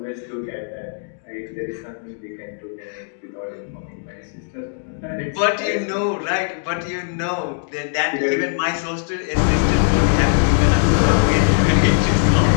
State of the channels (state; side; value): silent; right; digital silence